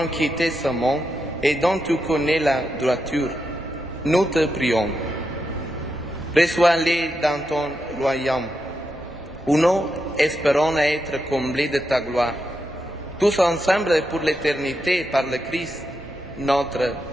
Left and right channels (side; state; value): both; normal; correlation 0.85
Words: quitté ce monde et dont tu connais la droiture, nous te prions. Reçois-les dans ton royaume, où nous espérons être comblés de ta gloire, tous ensemble pour l'éternité par le Christ, notre